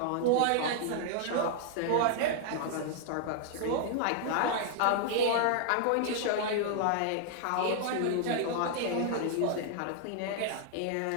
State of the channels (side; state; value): both; different; correlation 0.00